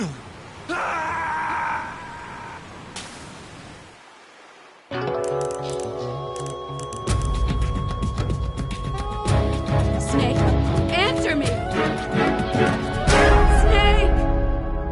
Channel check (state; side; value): identical; both; correlation 1.00